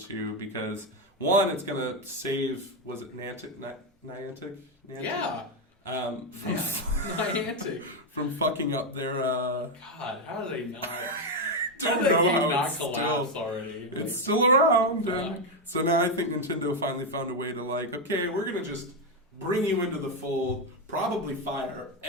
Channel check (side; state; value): both; normal; correlation 0.06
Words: because, one, it's going to save, was it Niantic? Yeah. Niantic. From fucking up their... God, how do they not... How did that game not collapse already? It's still around. And so now I think Nintendo finally found a way to like, okay, we're going to just bring you into the fold, probably fire